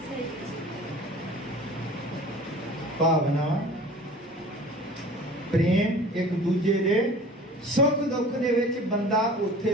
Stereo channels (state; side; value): normal; both; correlation 0.43